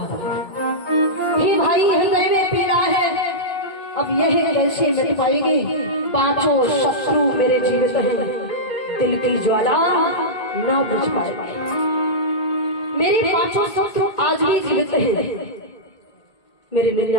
है। हे भाई, हृदय में पीड़ा है, अब यह कैसे मिट पाएगी? 5 शत्रु मेरे जीवित हैं, दिल की ज्वाला ना बुझ पाएगी। मेरे 5 शत्रु आज भी जीवित हैं, मेरे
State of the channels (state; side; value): late; right; 1.8 ms